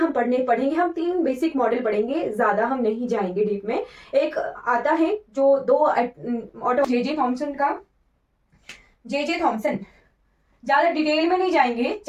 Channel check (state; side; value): identical; both; correlation 1.00